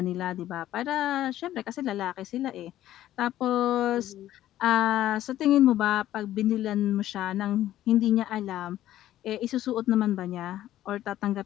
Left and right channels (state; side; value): quieter; right; 13.2 dB